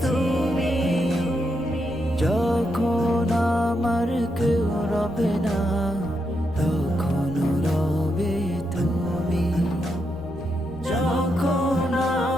তুমি। যখন আমার কেউ রবে না তখন রবে তুমি। যখন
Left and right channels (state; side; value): normal; both; correlation 0.82